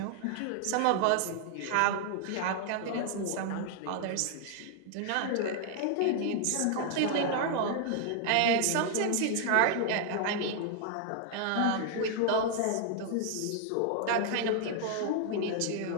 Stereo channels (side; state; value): both; different; correlation 0.00